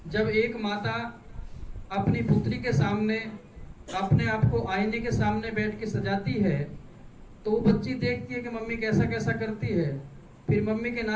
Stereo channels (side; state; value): both; identical; correlation 1.00